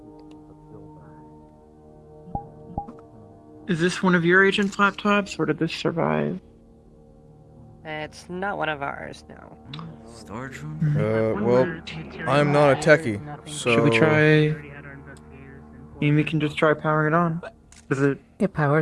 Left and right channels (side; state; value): both; identical; correlation 1.00